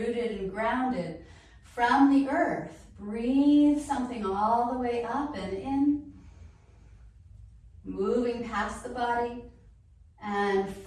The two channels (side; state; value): both; identical; correlation 1.00